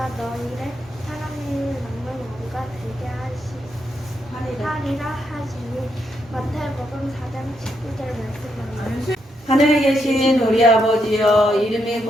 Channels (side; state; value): both; normal; correlation 0.80